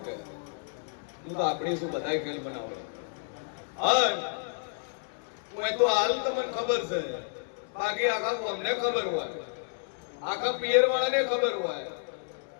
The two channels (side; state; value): right; silent; digital silence